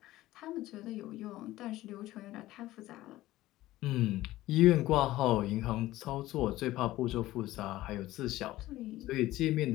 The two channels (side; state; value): right; quieter; 16.3 dB